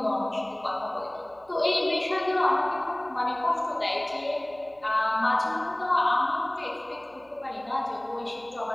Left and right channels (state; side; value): noise; right; hum, 30 dB below the sound